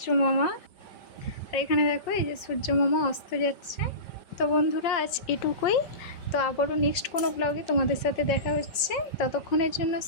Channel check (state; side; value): late; right; 5.5 ms